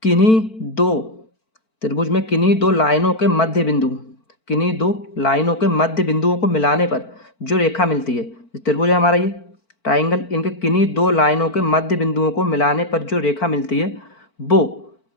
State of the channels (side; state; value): right; late; 4.5 ms